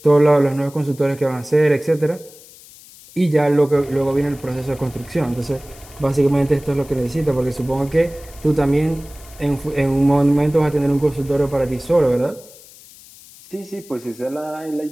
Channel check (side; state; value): left; noise; hiss, 22 dB below the sound